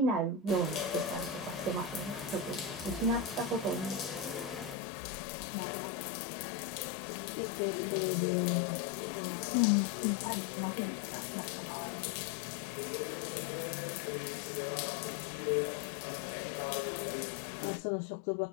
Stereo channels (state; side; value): drops out; right; at 4.8 s